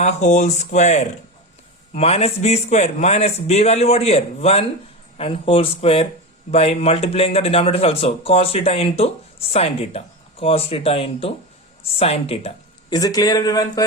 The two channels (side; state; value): both; normal; correlation 0.21